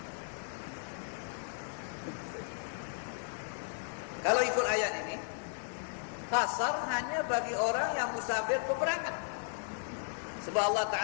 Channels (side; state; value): right; silent; digital silence